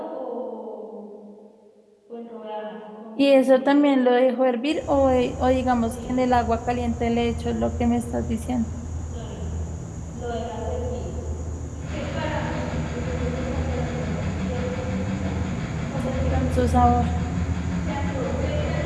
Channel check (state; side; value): identical; both; correlation 1.00